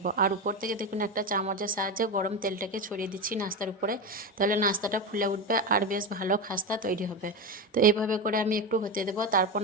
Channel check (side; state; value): both; normal; correlation 0.18